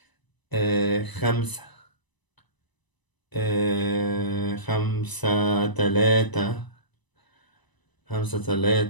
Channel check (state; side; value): late; right; 1.0 ms